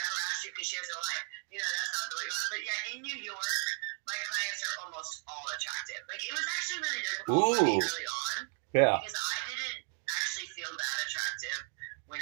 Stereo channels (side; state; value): left; quieter; 37.8 dB